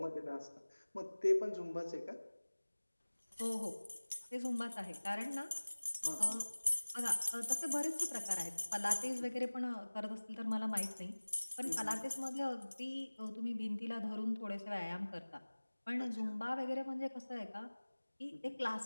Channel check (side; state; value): both; inverted; correlation -1.00